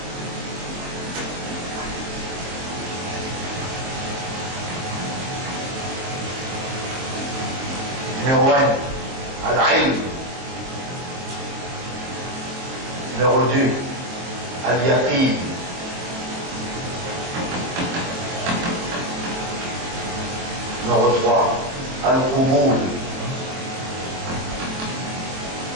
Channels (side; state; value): left; late; 23 ms